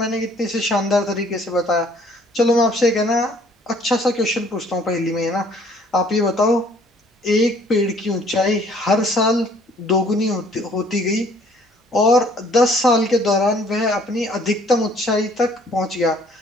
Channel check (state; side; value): normal; both; correlation 0.59